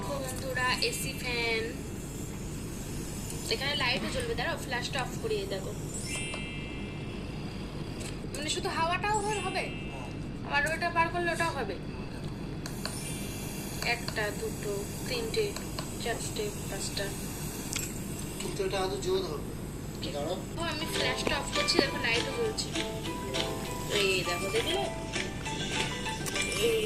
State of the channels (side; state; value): both; identical; correlation 1.00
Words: বন্ধুরা, এসি ফ্যান, এখানে লাইটও জ্বলবে। দাঁড়াও, ফ্ল্যাশটা অফ করিয়ে দেখো। মানে শুধু হাওয়াটাও হবে, আবার ওটা পার করলে ওটাও হবে। একটা, দুটো, তিনটে, চারটে, পাঁচটা। কিন্তু এটা আদৌ জোর হবে। আমি ফ্ল্যাশটা অফ করছি, দেখো লাইটও জ্বলছে। এই দেখো, দেখলে? এই